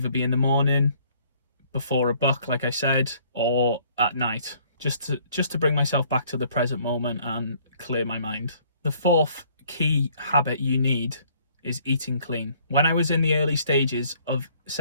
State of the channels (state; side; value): inverted; both; correlation -0.61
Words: be in the morning, before a book, like I said, or at night. Just to bring myself back to the present moment and clear my mind. The fourth key habit you need is eating clean. When I was in the early stages of